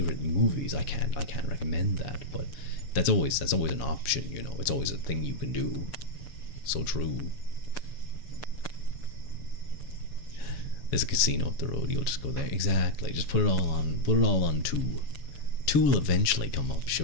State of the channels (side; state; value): right; late; 7.1 ms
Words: movies. I can't recommend that, but that's always an option. It's always a thing you can do. So true. There's a casino up the road. You'll just go there. Exactly. Just put it all on 2. 2 will eventually come up.